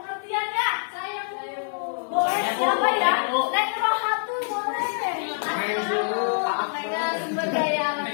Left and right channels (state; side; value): silent; right; digital silence